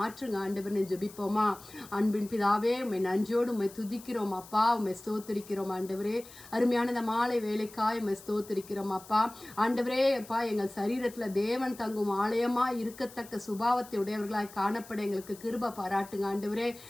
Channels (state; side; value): noise; left; hiss, 19 dB below the sound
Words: ஆண்டவரே. ஜெபிப்போமா? அன்பின் பிதாவே, உம்மை நன்றியோடு உம்மை துதிக்கிறோம் அப்பா. உம்மை ஸ்தோத்திரிக்கிறோம் ஆண்டவரே. அருமையான இந்த மாலை வேலைக்காய் உம்மை ஸ்தோத்திரிக்கிறோம் அப்பா. ஆண்டவரே அப்பா, எங்கள் சரீரத்துல தேவன் தங்கும் ஆலயமா இருக்கத்தக்க சுபாவத்தை உடையவர்களாய் காணப்பட எங்களுக்கு கிருபை பாராட்டுங்க ஆண்டவரே.